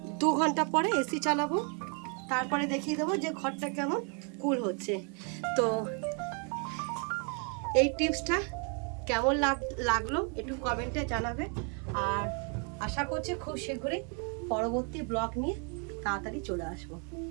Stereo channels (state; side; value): quieter; left; 38.3 dB